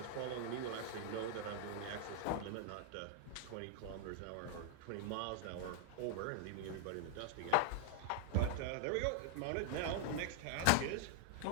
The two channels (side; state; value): both; different; correlation -0.01